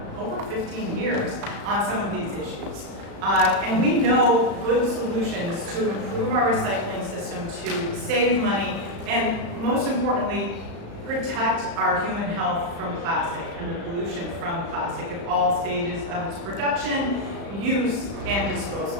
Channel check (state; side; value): late; left; 35 ms